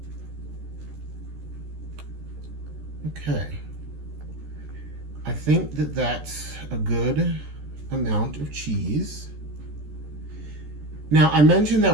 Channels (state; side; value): late; left; 14 ms